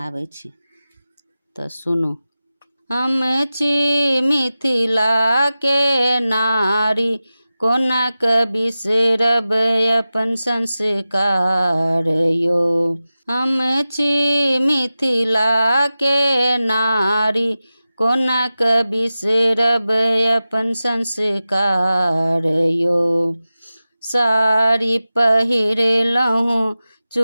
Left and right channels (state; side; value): inverted; both; correlation -0.95